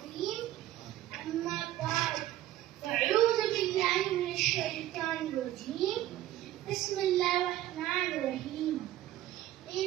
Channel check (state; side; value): quieter; left; 14.0 dB